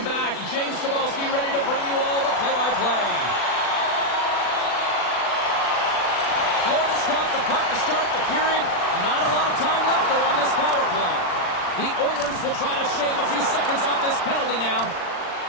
back. James Cebulski ready to bring you all the play-by-play. Florida's got the puck to start the period. Not a lot of time left, though, on this power play. The Oilers will try to shave a few seconds off this penalty now.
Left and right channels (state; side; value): late; right; 40 ms